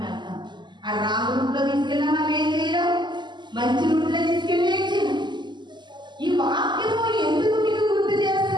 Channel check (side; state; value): left; late; 0.21 ms